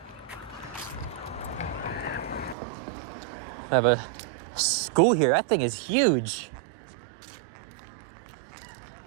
I have a school here. That thing is huge.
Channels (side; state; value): left; drops out; at 2.6 s